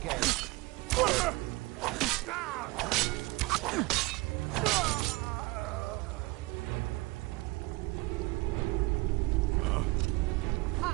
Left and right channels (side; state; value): left; quieter; 23.1 dB